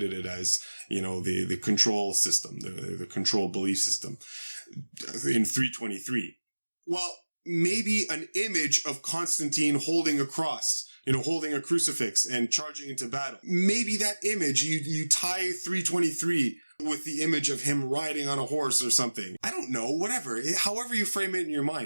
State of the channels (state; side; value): inverted; both; correlation -1.00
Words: it as, the control system, the control belief system in 323. Well, maybe an image of Constantine holding a cross holding a crucifix and charging into battle. Maybe that image, you tie 323 with the image of him riding on a horse or something. I don't know, whatever. However you frame it in your